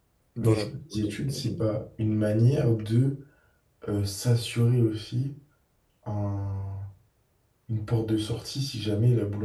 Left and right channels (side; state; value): both; identical; correlation 1.00